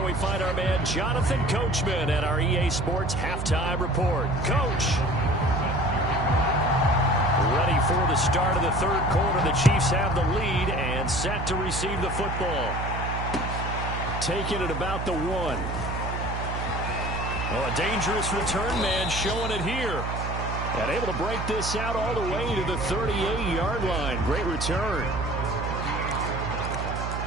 we find our man Jonathan Coachman at our EA Sports Halftime Report. Coach. Ready for the start of the third quarter. The Chiefs have the lead and set to receive the football. Taking it about the 1. Oh, a dangerous return man showing it here. And able to break this out all the way to the 38-yard line. Great return.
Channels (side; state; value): right; noise; hum, 4 dB below the sound